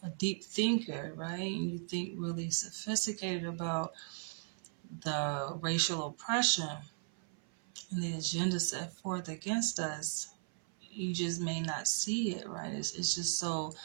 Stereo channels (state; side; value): silent; left; 53 dB below the other